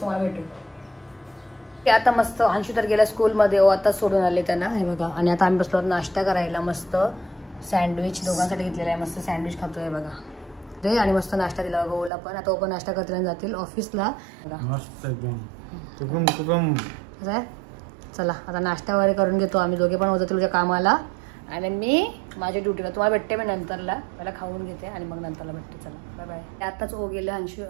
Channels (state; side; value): drops out; left; at 12.1 s